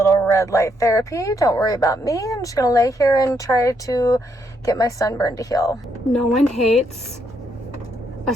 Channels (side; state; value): both; normal; correlation 0.75